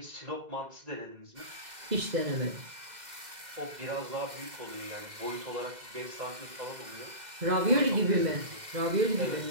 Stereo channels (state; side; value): late; left; 2.0 ms